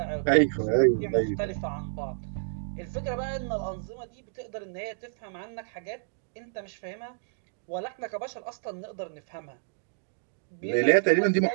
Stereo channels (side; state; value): left; silent; digital silence